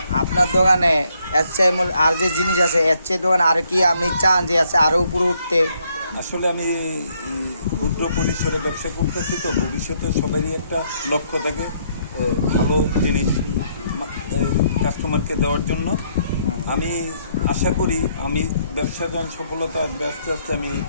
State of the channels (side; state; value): both; inverted; correlation -0.71